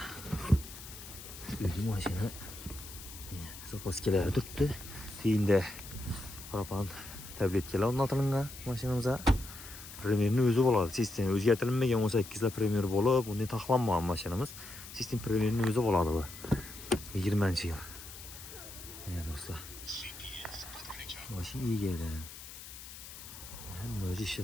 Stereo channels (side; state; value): left; noise; hiss, 14 dB below the sound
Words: o'zi mashina zapaskalari turibdi. Keyinda propan tabletkalar o'rnatilgan mashinamizga. Premierni o'zi bo'ladi. Sistem o'zgartirilmagan 18 premier bo'lib, undan taxlanmagan mashinamiz. Sistem premierni o'zi bo'ladi bu. 20-yil. Do'stlar. Mashina egadan. Hamma o'zi